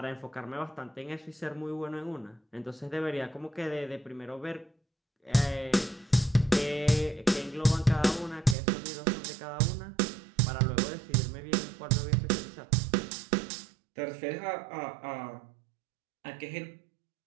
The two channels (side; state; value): left; drops out; at 8.6 s